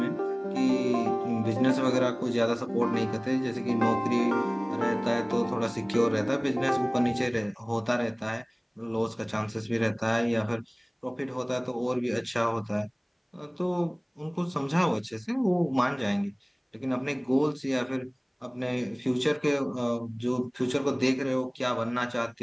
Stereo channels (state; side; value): identical; both; correlation 1.00